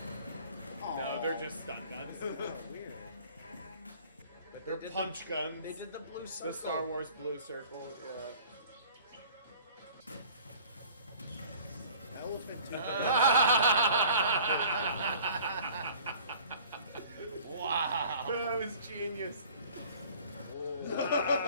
No, they're just stun guns. Weird. They're punch guns. They did the blue circle. The Star Wars blue circle. Yeah. Elephant tooth. Wow. That was genius.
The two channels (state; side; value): inverted; both; correlation -0.48